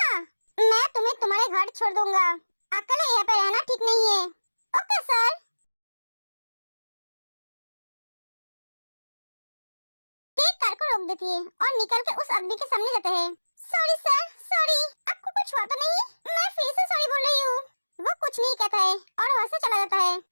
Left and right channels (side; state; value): both; inverted; correlation -1.00